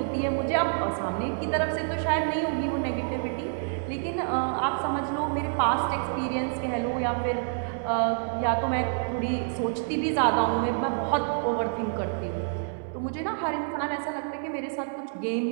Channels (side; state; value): left; silent; 59 dB below the other